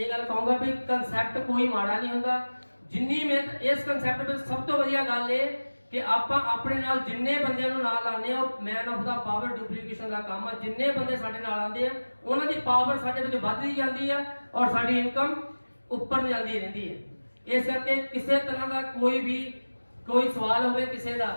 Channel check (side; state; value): both; inverted; correlation -1.00